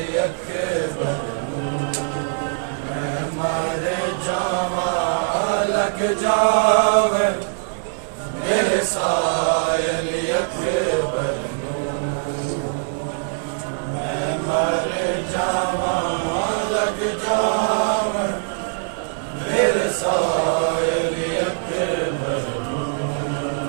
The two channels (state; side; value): silent; left; digital silence